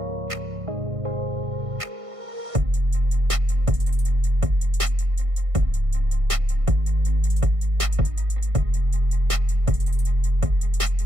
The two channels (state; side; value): late; left; 1.5 ms